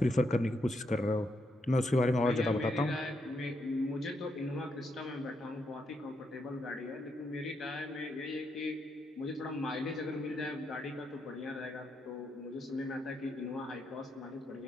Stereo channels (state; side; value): normal; both; correlation 0.80